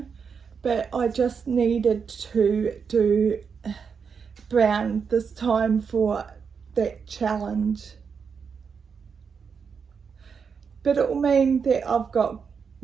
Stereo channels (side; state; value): left; quieter; 6.1 dB